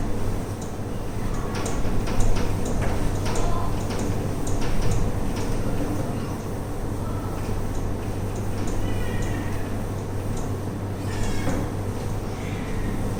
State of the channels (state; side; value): identical; both; correlation 1.00